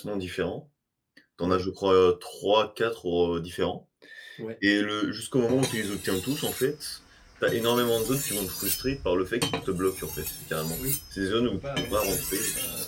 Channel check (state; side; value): identical; both; correlation 1.00